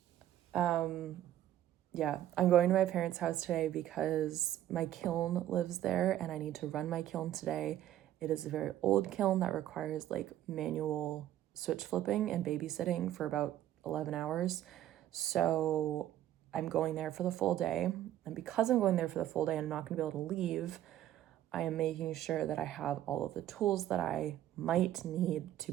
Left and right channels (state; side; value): quieter; left; 12.5 dB